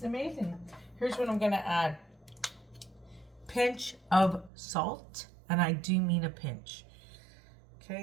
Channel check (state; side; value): drops out; left; at 4.5 s